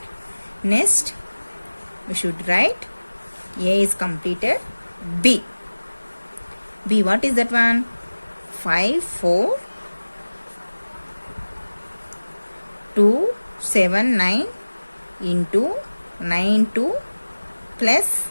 Next, we should write A is completed. B. B, what is that one? 5, 4, 2, 7, 9 into 9, 2 plus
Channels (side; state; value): both; inverted; correlation -1.00